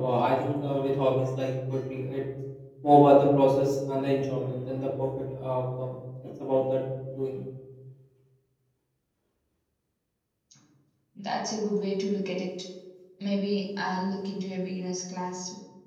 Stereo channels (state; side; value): identical; both; correlation 1.00